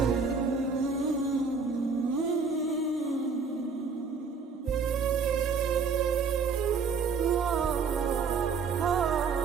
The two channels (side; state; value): left; quieter; 5.2 dB